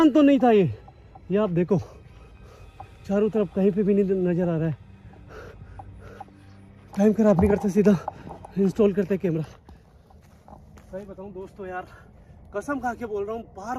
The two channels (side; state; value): both; identical; correlation 1.00